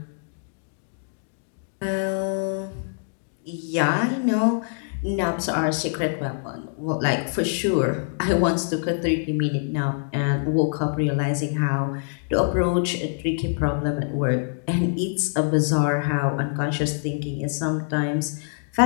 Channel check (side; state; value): right; silent; digital silence